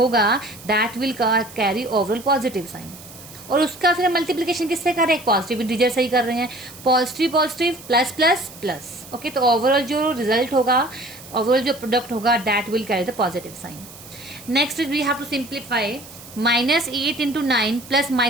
that will carry overall positive sign. और उसका फिर मल्टीप्लिकेशन किससे कर रहे हैं? पॉजिटिव इंटीजर से ही कर रहे हैं। Positive positive plus plus plus. Okay, तो ओवरऑल जो रिजल्ट होगा, ओवरऑल जो प्रोडक्ट होगा that will carry the positive sign. Next is we have to simplify -8 into 9 plus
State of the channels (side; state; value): right; noise; hiss, 18 dB below the sound